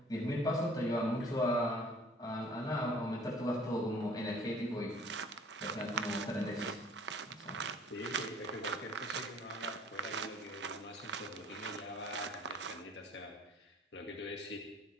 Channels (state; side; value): normal; both; correlation 0.53